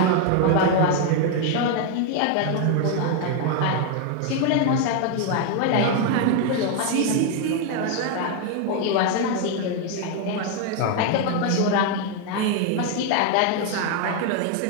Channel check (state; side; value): different; both; correlation 0.01